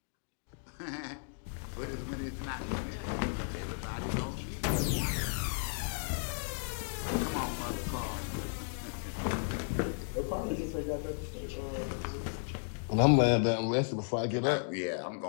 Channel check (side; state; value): right; silent; digital silence